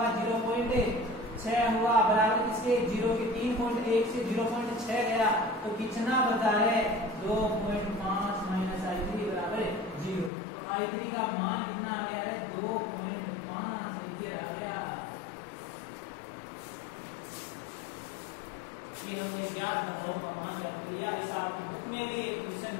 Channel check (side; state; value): right; drops out; at 10.3 s